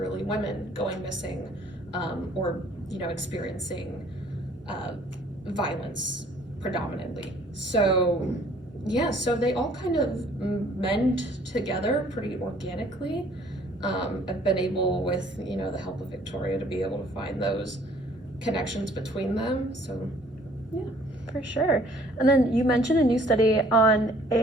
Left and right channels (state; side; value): normal; both; correlation 0.57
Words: women, going missing, or experiencing violence predominantly. So they all kind of mend together pretty organically. I've been able, with the help of Victoria, to be able to find those connections between them. So yeah. For sure. And then you mentioned a new study on